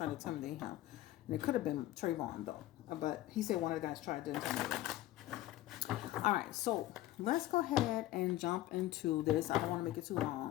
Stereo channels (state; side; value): quieter; right; 15.3 dB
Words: to intimidate him. And it could have been Trayvon though. But he said one of the guys tried to intimidate him. All right, so let's go ahead and jump into this. I don't want to make it too